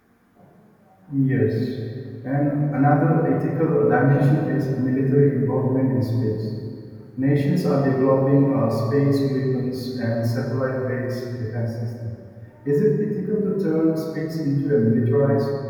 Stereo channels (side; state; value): both; identical; correlation 1.00